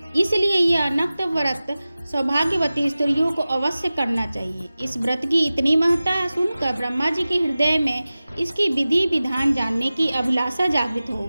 इसलिए यह नक्त व्रत सौभाग्यवती स्त्रियों को अवश्य करना चाहिए। इस व्रत की इतनी महत्ता सुनकर ब्रह्मा जी के हृदय में इसकी विधि विधान जानने की अभिलाषा जागृत हो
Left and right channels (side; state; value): both; inverted; correlation -0.96